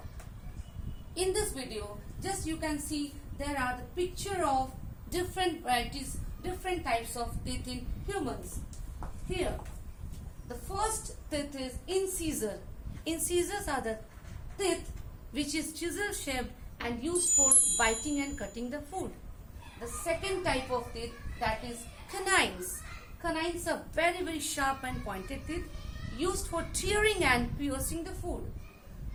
in this video, just you can see there are the picture of different varieties, different types of teeth in humans. Here, the first teeth is incisor. Incisors are the teeth which is chisel shaped and used for biting and cutting the food. The second type of teeth, that is canines. Canines are very sharp and pointed teeth used for tearing and piercing the food.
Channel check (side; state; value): both; identical; correlation 1.00